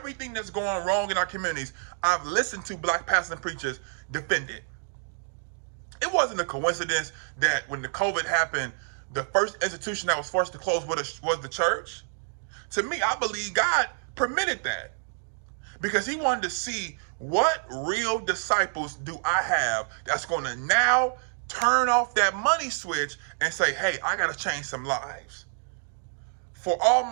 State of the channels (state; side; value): silent; left; digital silence